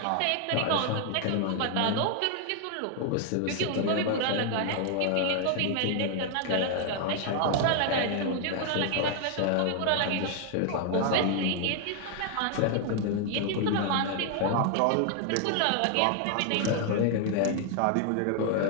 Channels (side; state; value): both; different; correlation 0.00